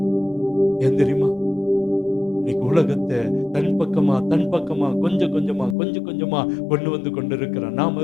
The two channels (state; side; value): drops out; right; at 5.8 s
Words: ஏன் தெரியுமா? இன்னைக்கு உலகத்தை தன் பக்கமா கொஞ்சம் கொஞ்சமா கொண்டு வந்து கொண்டிருக்கிறான். நாம்